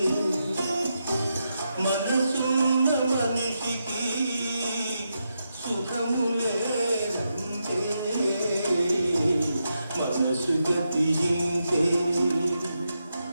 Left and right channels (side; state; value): both; inverted; correlation -0.85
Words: మనసున్న మనిషికి సుఖము లేదంతే. మనసు గతింతే.